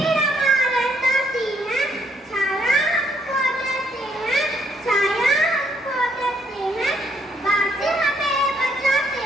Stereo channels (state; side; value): normal; both; correlation 0.70